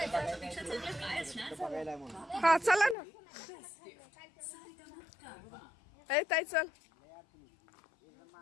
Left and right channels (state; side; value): drops out; right; at 3.0 s